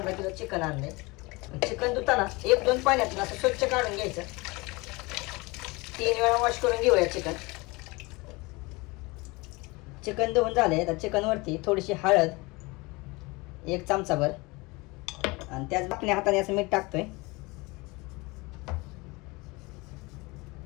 किलो चिकन आणले। चिकन धुताना 1-2 पाण्यातून असं स्वच्छ काढून घ्यायचं, 3 वेळा वॉश करून घेऊया चिकन। चिकन धुवून झाले तर चिकनवरती थोडीशी हळद, 1 चमचाभर, आणि त्याच बाकल्या हाताने असं मीठ टाकतोय।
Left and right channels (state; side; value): quieter; right; 24.7 dB